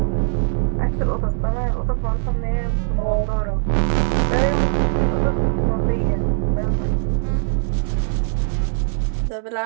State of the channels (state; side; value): silent; left; digital silence